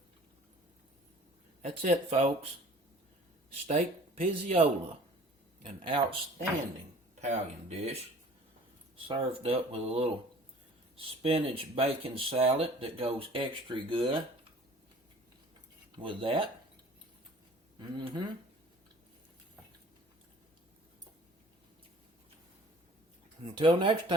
That's it, folks. Steak Pizzaiola, an outstanding Italian dish, served up with a little spinach bacon salad that goes extra good with that. Until next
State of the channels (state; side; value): normal; both; correlation 0.49